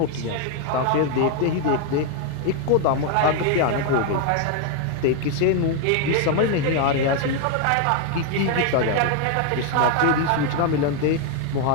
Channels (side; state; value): both; different; correlation 0.00